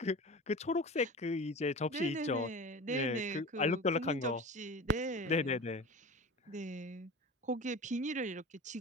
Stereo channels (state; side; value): normal; both; correlation 0.34